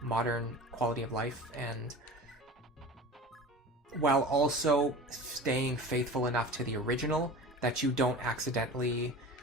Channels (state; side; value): normal; both; correlation 0.36